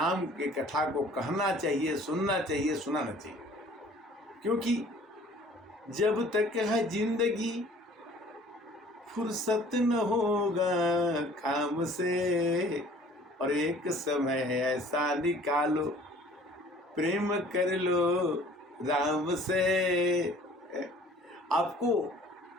के कथा को कहना चाहिए, सुनना चाहिए, सुनाना चाहिए। क्योंकि जब तक है जिंदगी फुर्सत न होगा काम से, और एक समय ऐसा निकालो प्रेम कर लो राम से। आपको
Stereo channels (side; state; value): both; normal; correlation 0.52